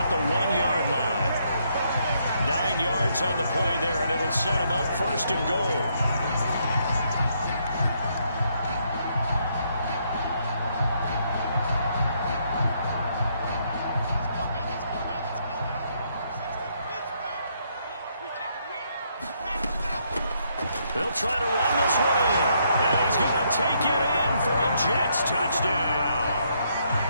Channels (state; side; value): inverted; both; correlation -0.73